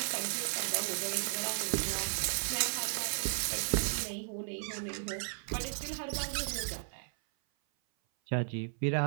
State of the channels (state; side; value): silent; left; 55 dB below the other